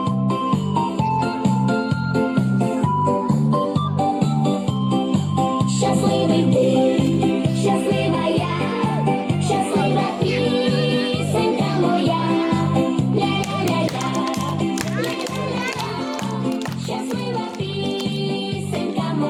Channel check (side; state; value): both; identical; correlation 1.00